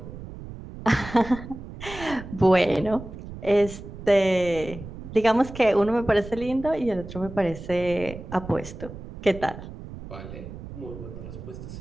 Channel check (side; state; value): right; noise; rumble, 12 dB below the sound